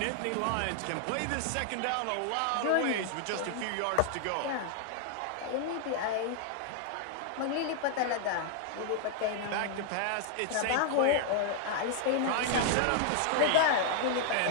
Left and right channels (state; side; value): different; both; correlation 0.00